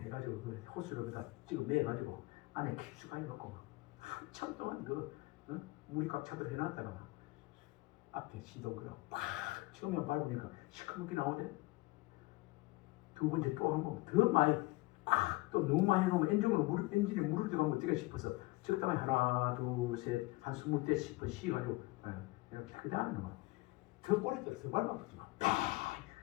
그 호수를 다 지금 매가지고 안에 깊숙하게 넣고 한참 동안 그 물이 꽉 차도록 해놨다가 앞에 시동그려 팍 처음에 밟으니까 시커멓게 나오대. 두 번째 또 한 번 더 많이 팍또 너무 많이 넣으면 엔진이 물을 들어가면 어떻게 싶어서 적당히 하나 둘 셋 한 20대 싶어 쉬가지고 이렇게 하는 거. 더 꼬리 들어서 밟아붙지 마.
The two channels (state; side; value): quieter; right; 21.9 dB